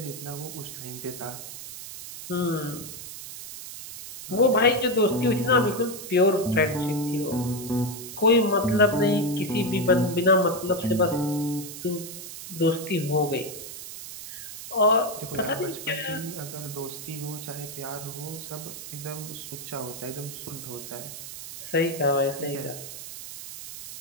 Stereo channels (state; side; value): noise; right; hiss, 11 dB below the sound